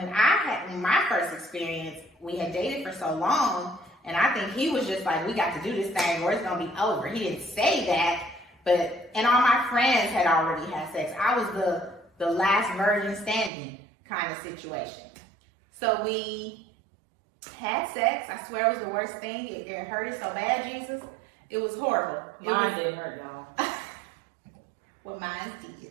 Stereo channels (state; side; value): drops out; left; at 13.5 s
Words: I had my first experience, we had dated for so long, and I think he was just like, we got to do this thing or it's gonna be over. He didn't say that, and all my friends had already had sex. I was the last virgin standing kind of situation. So we had sex. I swear it was the worst thing. It hurted so bad, Jesus. It was horrible. Mine didn't hurt, y'all. Well, mine did.